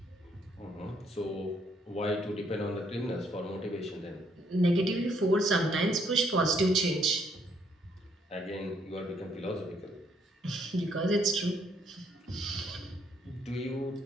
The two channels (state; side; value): normal; both; correlation 0.70